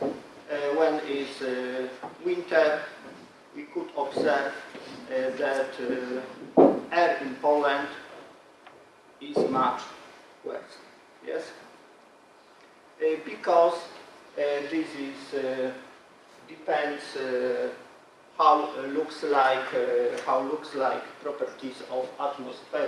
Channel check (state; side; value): identical; both; correlation 1.00